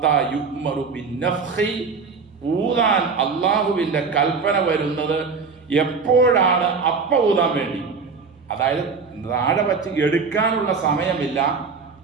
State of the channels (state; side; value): quieter; left; 5.0 dB